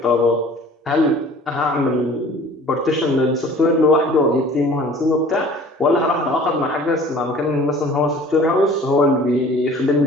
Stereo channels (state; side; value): normal; both; correlation 0.48